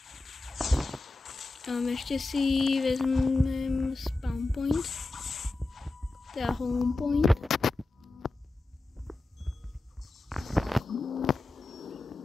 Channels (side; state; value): right; quieter; 3.1 dB